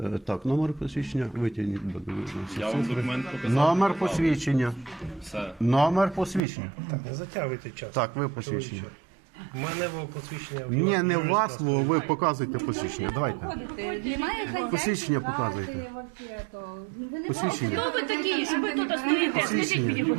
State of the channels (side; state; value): left; drops out; at 6.4 s